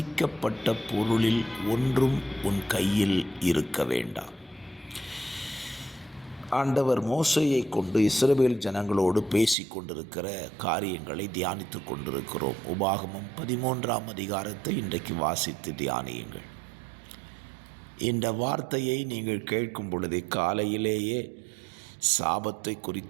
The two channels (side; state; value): left; drops out; at 9.6 s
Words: பொருளில் ஒன்றும் உன் கையில் இருக்க வேண்டாம். ஆண்டவர் மோசேயை கொண்டு இஸ்ரவேல் ஜனங்களோடு பேசி கொண்டிருக்கிற காரியங்களை தியானித்து கொண்டிருக்கிறோம். உபாகமம் 13ஆம் அதிகாரத்தை இன்றைக்கு வாசித்து தியானியுங்கள். இந்த வார்த்தையை நீங்கள் கேட்கும் பொழுதே காலையிலேயே சாபத்தை